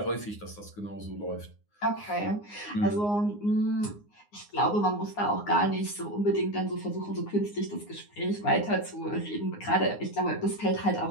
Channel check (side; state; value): right; late; 9.7 ms